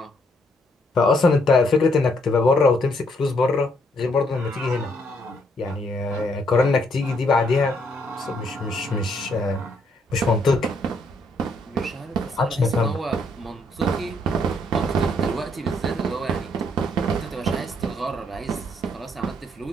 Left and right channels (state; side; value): normal; both; correlation 0.71